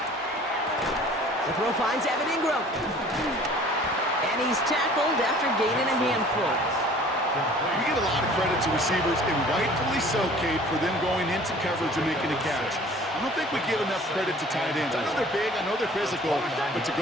The throw finds Evan Ingram. And he's tackled after gaining a handful. We give a lot of credit to receivers, and rightfully so, Kate, for them going into coverage and making a catch. I don't think we give enough credit to tight ends. I know they're big, I know they're physical, but to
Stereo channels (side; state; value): both; normal; correlation 0.49